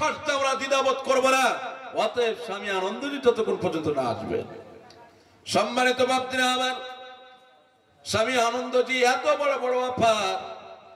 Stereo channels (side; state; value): both; identical; correlation 1.00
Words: আমরা দ্বিধাবোধ করবো না। অতএব স্বামী আনন্দজি যতক্ষণ পর্যন্ত না আসবে। সম্মানিত বাপজিরা আমার, স্বামী আনন্দজি এত বড় বড় অফার,